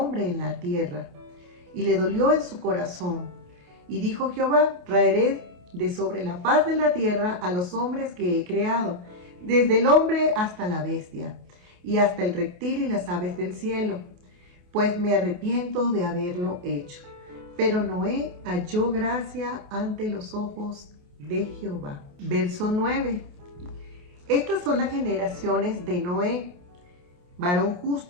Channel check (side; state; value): left; late; 28 ms